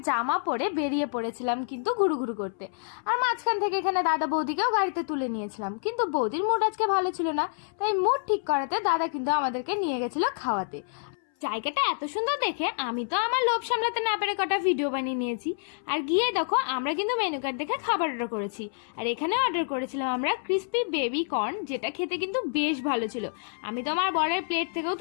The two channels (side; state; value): right; silent; 59 dB below the other